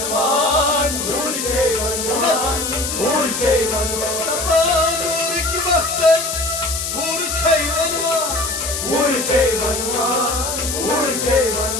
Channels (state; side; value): noise; left; hiss, 3 dB below the sound